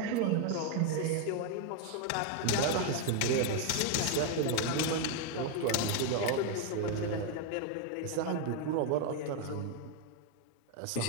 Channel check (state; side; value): different; both; correlation 0.01